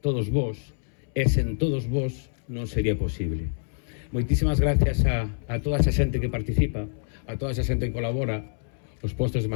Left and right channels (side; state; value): right; silent; 61 dB below the other